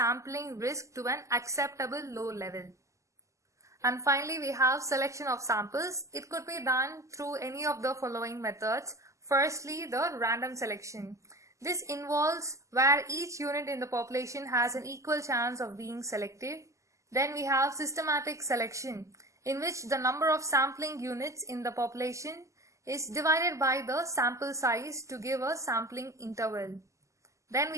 risk to an acceptable low level. And finally, we have selection of samples. It could be done through any of the following methods. Firstly, the random selection. This involves where each unit in the population has an equal chance of being selected. Then we have systematic selection, in which the number of sampling units in the population is divided by the sample size to give a sampling interval. Then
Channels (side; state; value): left; late; 0.15 ms